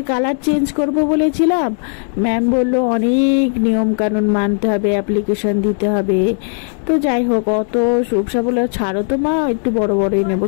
কালার চেঞ্জ করব বলেছিলাম, ম্যাম বলল অনেক নিয়ম কানুন মানতে হবে, অ্যাপ্লিকেশন দিতে হবে। তো যাই হোক, অত সুবসা বলে ছাড়ো তো মা, একটু বড় বড়ই নেবো,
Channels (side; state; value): right; silent; 55 dB below the other